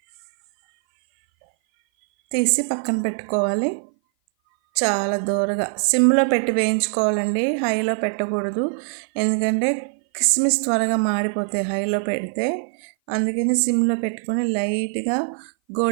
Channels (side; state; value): left; silent; 58 dB below the other